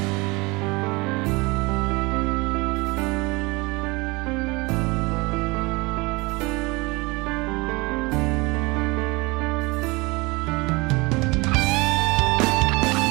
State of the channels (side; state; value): left; quieter; 25.0 dB